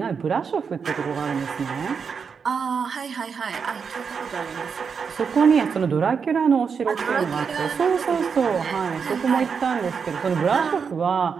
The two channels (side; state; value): left; quieter; 6.1 dB